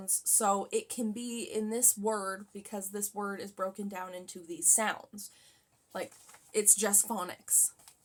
so it can be in this word because this word is broken down into these sounds. Like, it's just phonics.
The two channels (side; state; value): both; identical; correlation 1.00